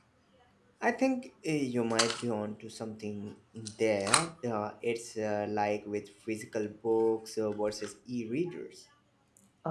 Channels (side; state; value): both; identical; correlation 1.00